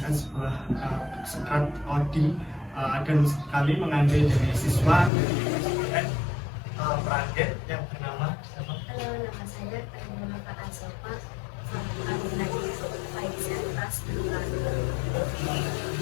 sebuah skrat coding dan kami mengambil dari siswa dari Praget yang bernama siapa? Halo, nama saya Terima Kak Asofa. Saya lagi Faizan kelas 2.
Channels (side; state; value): right; drops out; at 5.1 s